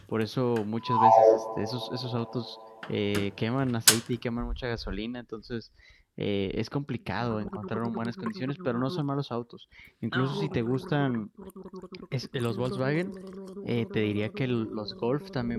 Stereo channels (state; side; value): identical; both; correlation 1.00